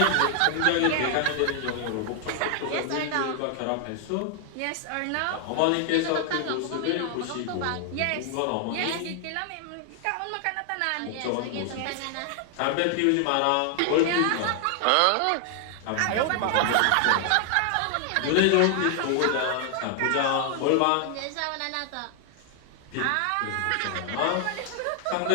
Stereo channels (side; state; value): both; different; correlation 0.00